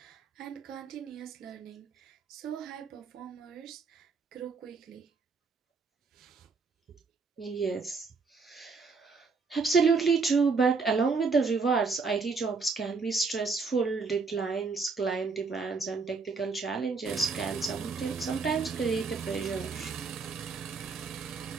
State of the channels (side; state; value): left; quieter; 4.6 dB